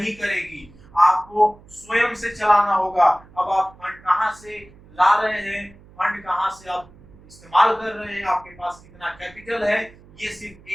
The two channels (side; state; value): right; noise; hum, 24 dB below the sound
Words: करेगी। आपको स्वयं से चलाना होगा। अब आप फंड कहाँ से ला रहे हैं, फंड कहाँ से आप इस्तेमाल कर रहे हैं, आपके पास कितना कैपिटल है, ये सिर्फ